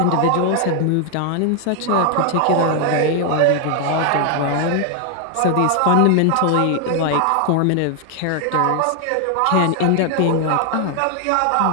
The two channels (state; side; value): different; both; correlation 0.00